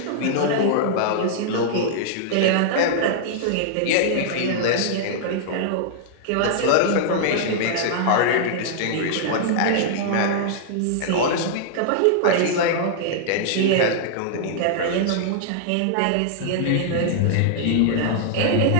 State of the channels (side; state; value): both; different; correlation -0.01